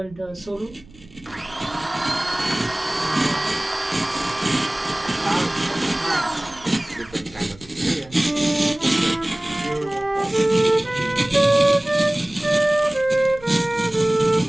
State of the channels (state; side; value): noise; right; rumble, 23 dB below the sound